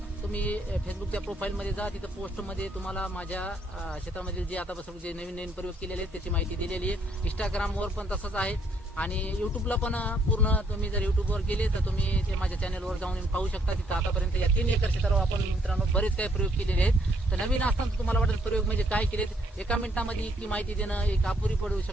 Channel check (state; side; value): normal; both; correlation 0.69